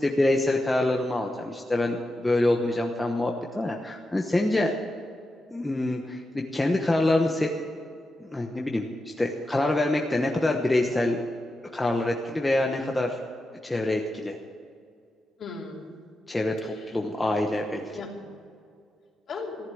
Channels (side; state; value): both; normal; correlation 0.89